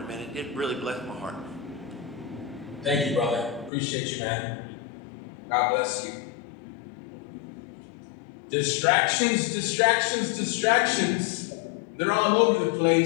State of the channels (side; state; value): right; drops out; at 3.7 s